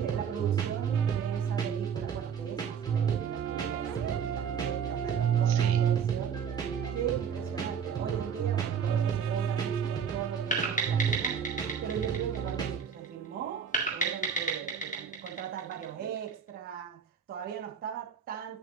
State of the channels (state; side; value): quieter; left; 7.3 dB